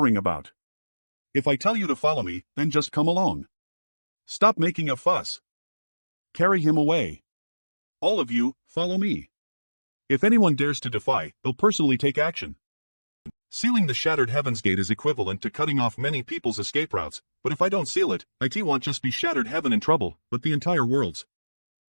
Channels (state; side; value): inverted; both; correlation -1.00